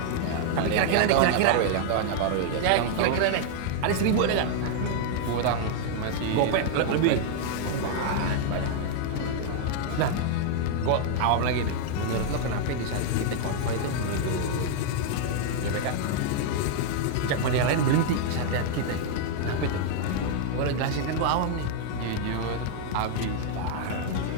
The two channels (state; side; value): different; both; correlation -0.01